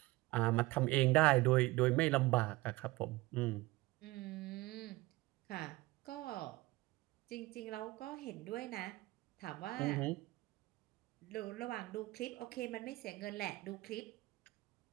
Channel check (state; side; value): quieter; left; 20.2 dB